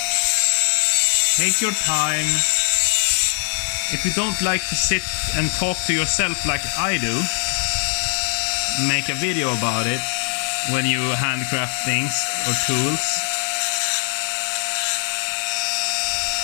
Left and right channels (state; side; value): silent; right; 65 dB below the other